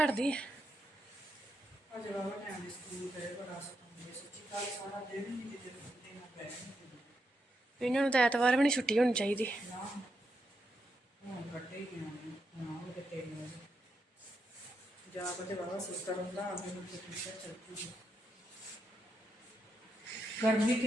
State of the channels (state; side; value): normal; both; correlation 0.83